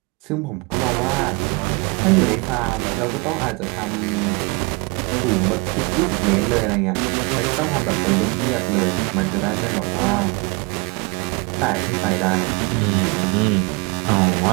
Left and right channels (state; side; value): quieter; left; 28.4 dB